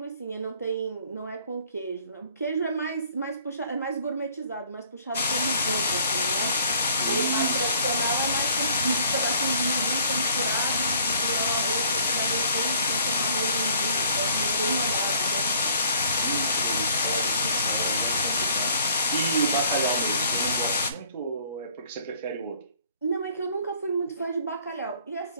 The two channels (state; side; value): inverted; both; correlation -0.58